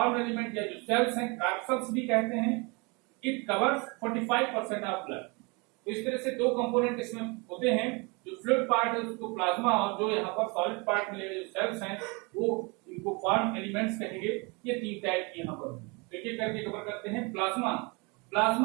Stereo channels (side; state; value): left; quieter; 29.3 dB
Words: एलिमेंट या जो सेल्स हैं, कार्पल्स भी कहते हैं, इट कवर्स 45% ऑफ ब्लड। तो इस तरह से दो कंपोनेंट इसमें होते हैं। जो फ्लूइड पार्ट है उसको प्लाज्मा, और जो यहाँ पर सॉलिड पार्ट मिलेगा, जो सेल्स हैं, वो इनको फॉर्म एलिमेंट्स कहेंगे। ये तीन टाइप की यहाँ पर एक एक करके कवर करते हैं। Plasma,